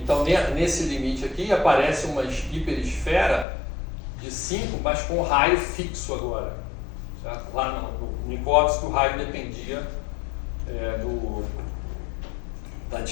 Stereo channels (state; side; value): drops out; right; at 3.5 s